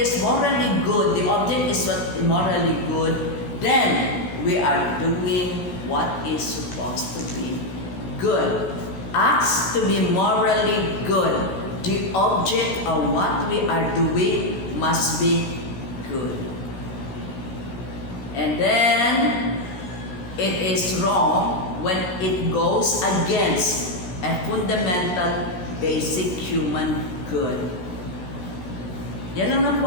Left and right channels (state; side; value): late; right; 17 ms